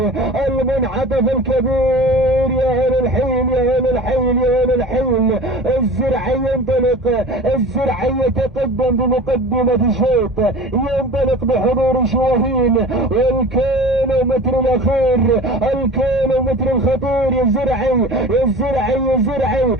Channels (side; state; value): both; normal; correlation 0.38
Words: المنعطف الكبير. يا أهل الحين يا أهل الحين يا أهل الحين. الزرعي ينطلق، الزرعي يتقدم بمقدمة الشوط، ينطلق بحضور شواهين. والكيلومتر الأخير، الكيلومتر الخطير. يا زرعي يا زرعي يا زرعي